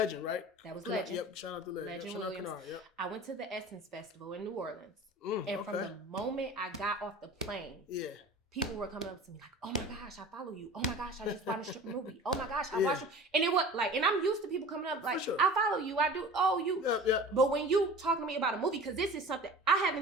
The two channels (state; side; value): normal; both; correlation 0.40